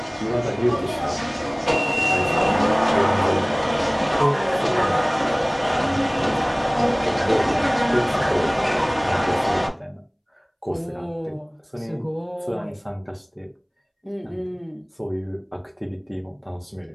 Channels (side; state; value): both; identical; correlation 1.00